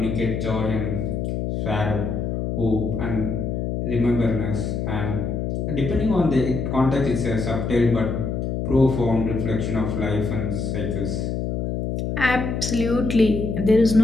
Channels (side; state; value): left; noise; hum, 2 dB below the sound